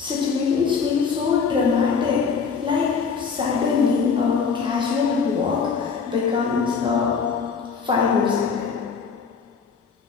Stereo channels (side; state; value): right; quieter; 5.7 dB